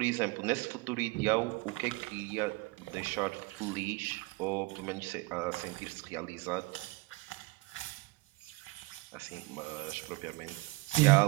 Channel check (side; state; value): left; quieter; 23.7 dB